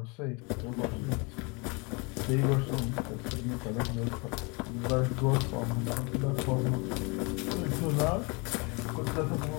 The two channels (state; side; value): quieter; right; 29.6 dB